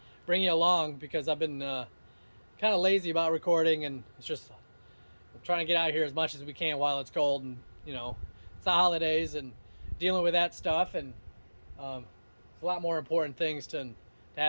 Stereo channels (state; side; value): inverted; both; correlation -1.00